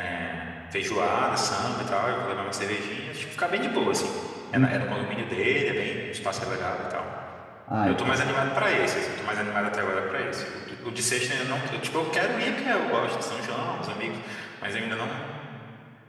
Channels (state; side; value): identical; both; correlation 1.00